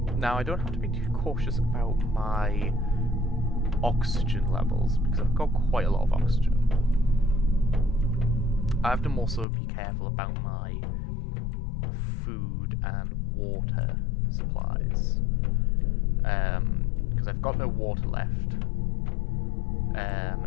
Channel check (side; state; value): right; drops out; at 9.5 s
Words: Now, I don't have to be too cautious about my oxygen levels because I've got quite a lot of oxygen. I have to also be careful about my food and water supplies, because I've got no water left.